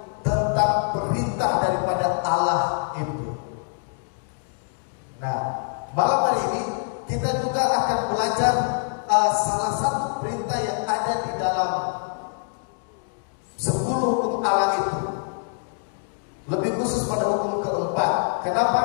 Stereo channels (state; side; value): silent; right; 62 dB below the other